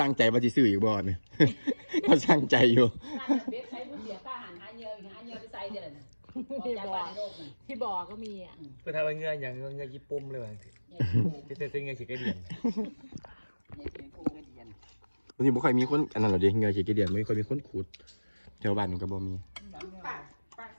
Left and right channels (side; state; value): both; inverted; correlation -1.00